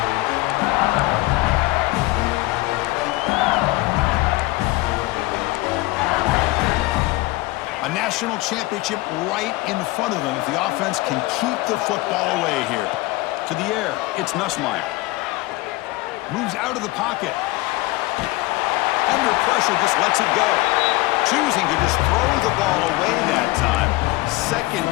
A national championship right in front of them if the offense can keep the football away here. To the air, it's Nussmeier. Moves out of the pocket. Under pressure, just lets it go. Choosing to just throw the ball away that time. 2nd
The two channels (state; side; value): quieter; right; 20.4 dB